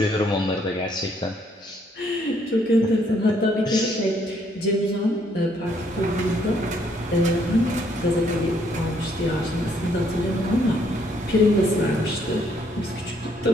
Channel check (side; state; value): both; normal; correlation 0.68